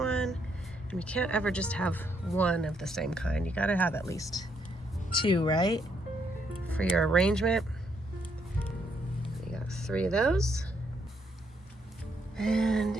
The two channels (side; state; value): both; normal; correlation 0.74